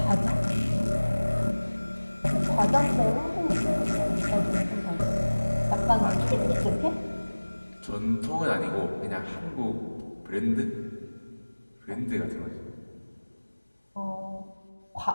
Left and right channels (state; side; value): inverted; both; correlation -1.00